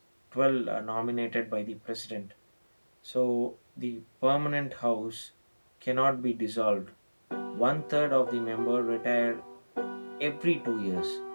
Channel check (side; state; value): both; inverted; correlation -1.00